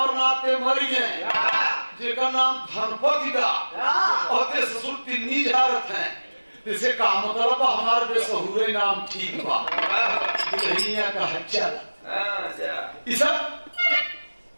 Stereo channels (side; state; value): both; inverted; correlation -1.00